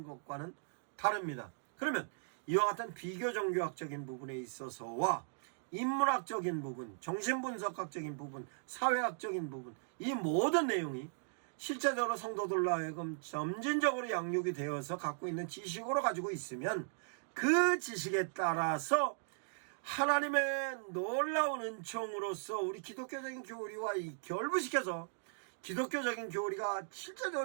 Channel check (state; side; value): silent; left; digital silence